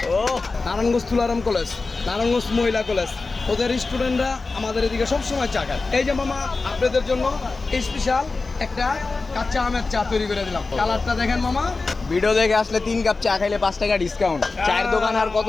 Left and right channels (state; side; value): quieter; right; 3.8 dB